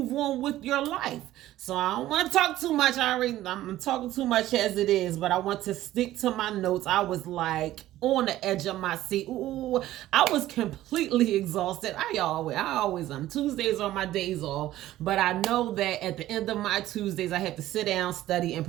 on with your life. So I don't want to talk too much. I'm talking too much as it is, but I want to stick to my notes. I was like on the edge of my seat. Ooh, I was completely exhausted. I always am. Tuesdays are my days off, but I know that at the end of my Tuesdays, I have to sit down, study, and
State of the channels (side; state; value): left; quieter; 14.6 dB